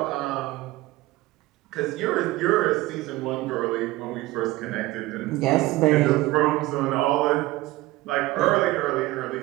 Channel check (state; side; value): quieter; left; 18.6 dB